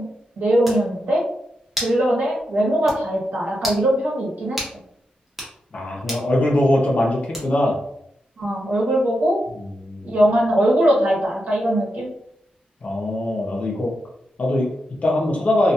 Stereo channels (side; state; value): both; normal; correlation 0.86